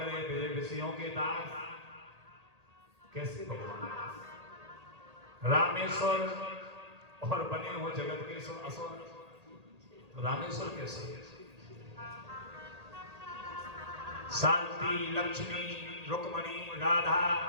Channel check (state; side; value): late; left; 1.8 ms